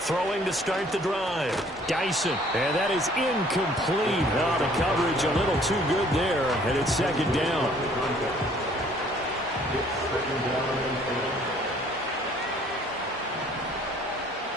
Throwing to start the drive. Dyson. And that is incomplete. Oh, the coverage a little too good there. And it's second down.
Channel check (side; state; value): both; normal; correlation 0.58